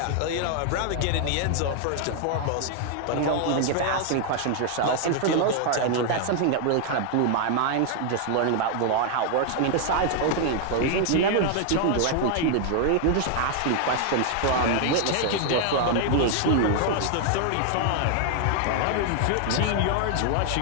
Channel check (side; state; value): both; different; correlation 0.00